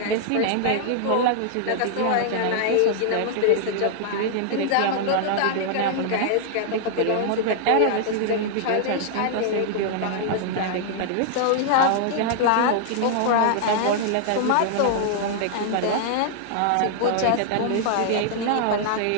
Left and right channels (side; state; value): both; different; correlation -0.01